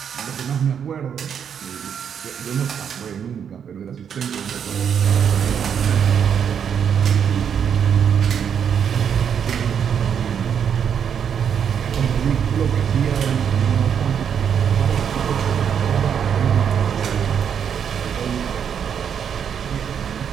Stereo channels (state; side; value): quieter; left; 7.9 dB